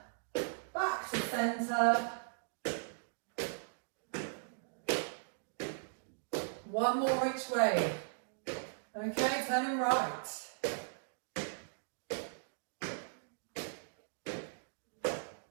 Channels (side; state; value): left; silent; digital silence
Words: Back to centre. One more each way. Okay, turning right.